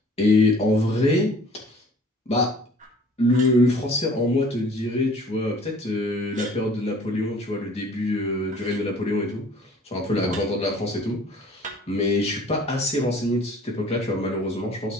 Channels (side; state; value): both; normal; correlation 0.51